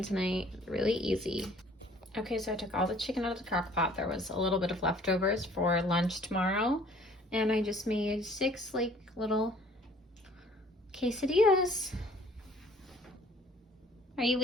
tonight. Really easy. Okay, so I took all the chicken out of the crock pot. There was a little bit of leftovers for lunch tomorrow. And I just made 6 like little quesadillas. Are you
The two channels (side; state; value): both; normal; correlation 0.55